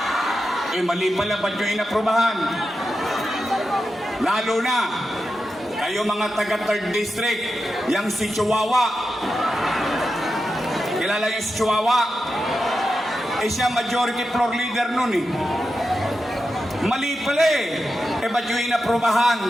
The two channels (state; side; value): normal; both; correlation 0.89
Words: Eh mali pala ba't nyo inaprubahan? Lalo na, kayo mga taga 3rd District, yang si Chihuahua. Kilala yung si Chihuahua? Eh siya majority floor leader nun eh. Mali pala eh. Eh ba't yung inaprubahan?